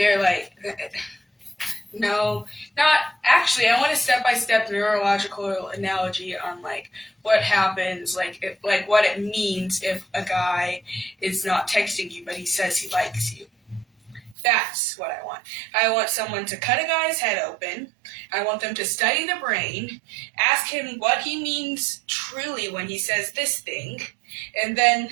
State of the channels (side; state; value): left; drops out; at 14.4 s